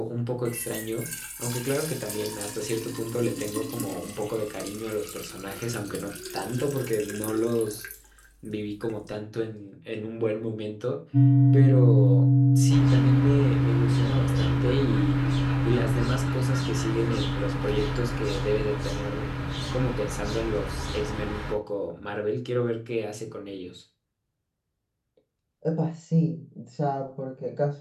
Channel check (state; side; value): identical; both; correlation 1.00